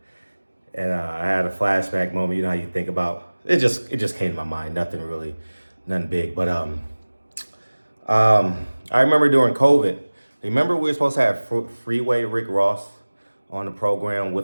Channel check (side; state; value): both; inverted; correlation -1.00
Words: had a flashback moment. You know how you think about it. Just came to my mind. Nothing big. But I remember during COVID. Remember we were supposed to have Freeway Rick Ross on the program